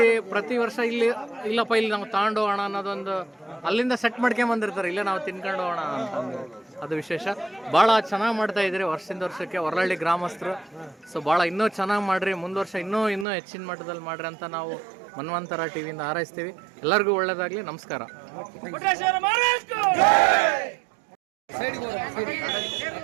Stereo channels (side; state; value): left; drops out; at 13.2 s